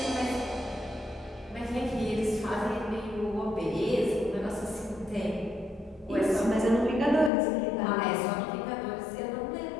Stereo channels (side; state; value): right; drops out; at 7.3 s